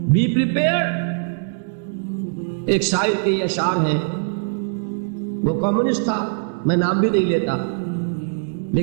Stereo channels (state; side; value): silent; left; digital silence